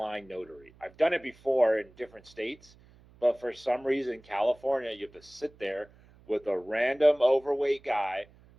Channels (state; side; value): noise; right; hum, 26 dB below the sound